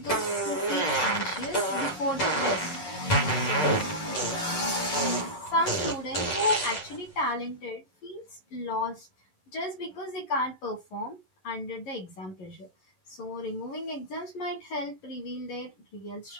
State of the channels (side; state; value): right; late; 11 ms